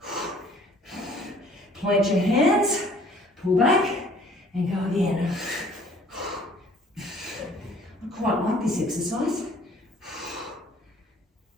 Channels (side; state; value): both; normal; correlation 0.55